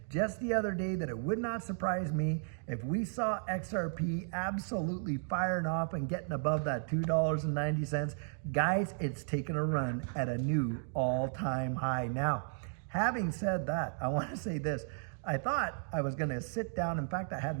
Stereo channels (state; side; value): silent; left; digital silence